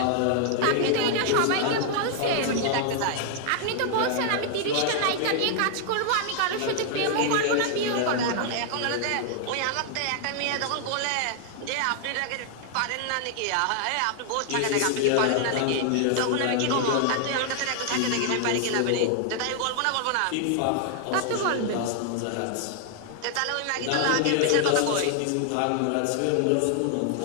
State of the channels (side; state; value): both; different; correlation 0.00